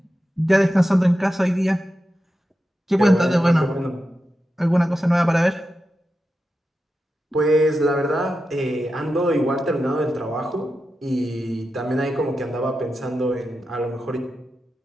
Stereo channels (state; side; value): normal; both; correlation 0.90